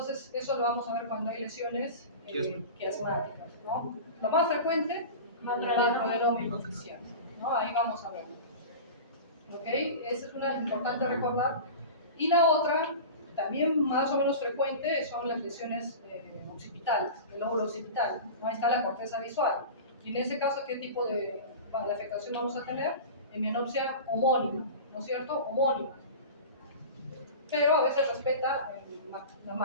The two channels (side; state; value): both; inverted; correlation -0.32